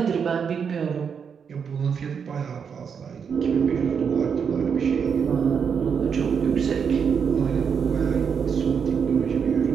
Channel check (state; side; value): quieter; left; 6.7 dB